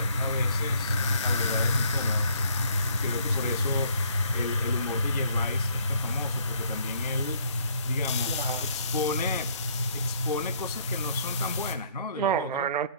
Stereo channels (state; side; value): inverted; both; correlation -0.63